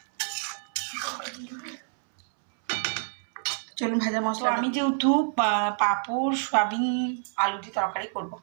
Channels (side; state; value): left; silent; 60 dB below the other